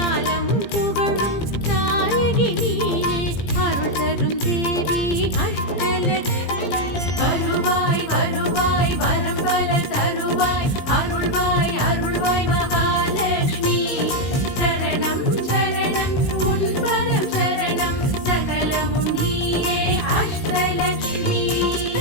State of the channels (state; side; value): late; right; 17 ms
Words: புகழும் நாயகி நீயே அருள் தரும் தேவி அஷ்டலக்ஷ்மி வருவாய் வருவாய் வரம் பல தருவாய் அருள்வாய் அருள்வாய் மகாலட்சுமி